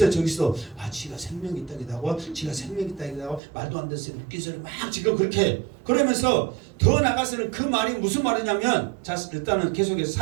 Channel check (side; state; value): left; drops out; at 3.4 s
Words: 저기서 지가 생명이 있다기도 지가 생명이 있다기도 말도 안 되는 웃긴 소리 막 지금 그렇게 그러면서 더 나가서는 그 말이 무슨 말이냐면 자 일단은